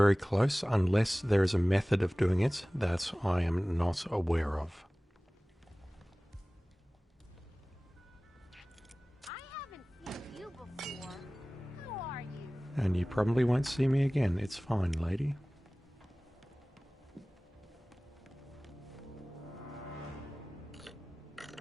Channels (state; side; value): normal; both; correlation 0.98